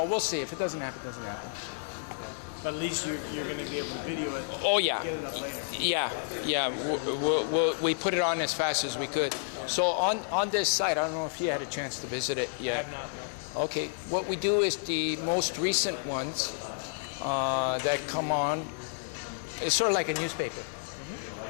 we'll see. If it doesn't happen, it doesn't happen. But at least you're going to be able to video it. Oh yeah. Get it up later. Yeah. We put it on as fast as we could. Yeah. So on this site, I don't know if you had a chance to visit it yet. I have not. No. Okay. What we do is the most recent ones that come on. It's sort of like a newspaper,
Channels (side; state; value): right; silent; 57 dB below the other